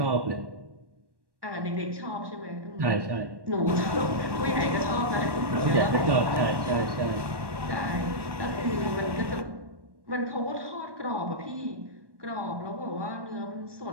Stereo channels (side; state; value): left; late; 1.1 ms